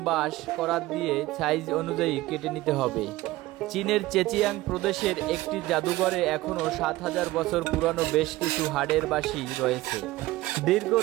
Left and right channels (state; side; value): quieter; left; 18.0 dB